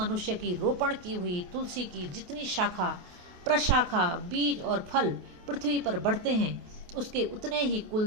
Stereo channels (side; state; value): left; late; 28 ms